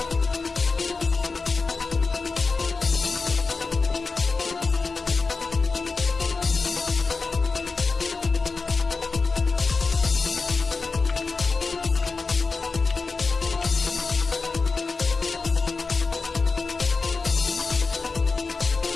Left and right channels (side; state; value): right; quieter; 4.3 dB